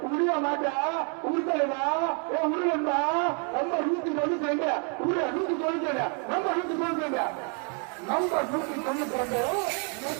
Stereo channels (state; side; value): quieter; left; 37.9 dB